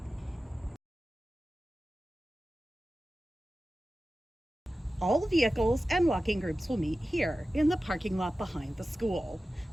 All vehicles and walking groups will meet here in the parking lot behind the school.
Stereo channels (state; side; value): normal; both; correlation 0.95